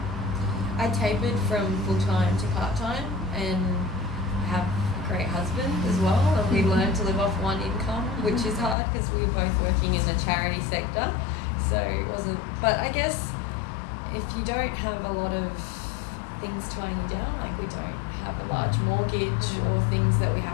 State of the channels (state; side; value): drops out; right; at 8.8 s